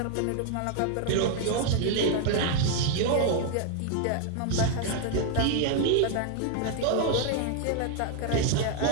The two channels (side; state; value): both; different; correlation 0.00